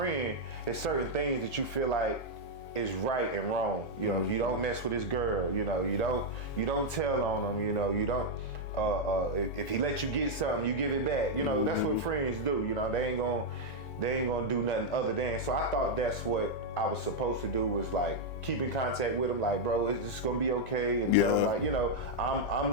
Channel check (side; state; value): right; late; 4.7 ms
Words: is certain things that you feel like is right and wrong. You know, you don't mess with this girl. You know, you don't tell on him. You know, you don't. If he let you get something, you give it back. You know, that's what friends do. You know, they ain't gonna do nothing other than. So I thought that's what I was supposed to do, was like keep in contact with him, like, bro, it's just gonna be okay, and tell him like, you know, I'm